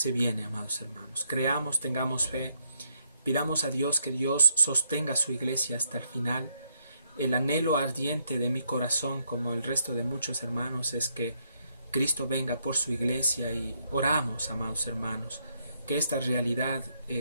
viene, amados hermanos. Creamos, tengamos fe, pidamos a Dios que Dios sostenga su iglesia hasta el final. El anhelo ardiente de mi corazón, como el resto de muchos hermanos, es que Cristo venga por su iglesia, y oramos, amados hermanos, que esta realidad,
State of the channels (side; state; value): both; inverted; correlation -0.75